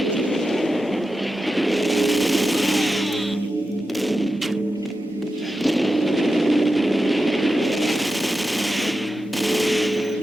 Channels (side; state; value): both; normal; correlation 0.90